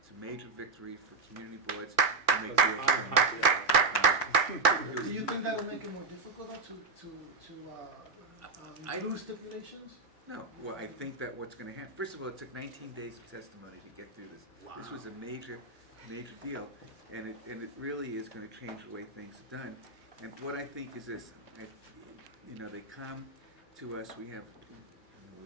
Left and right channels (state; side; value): quieter; left; 3.9 dB